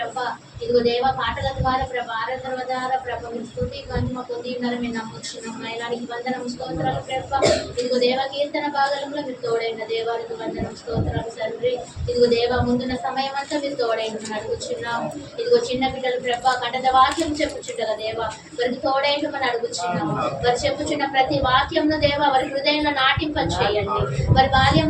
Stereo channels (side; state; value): both; identical; correlation 1.00